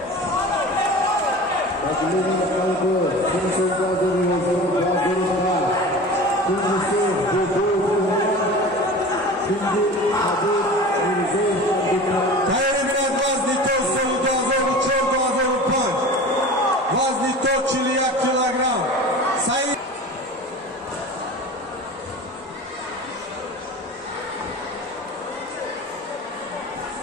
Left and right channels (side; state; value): both; normal; correlation 0.36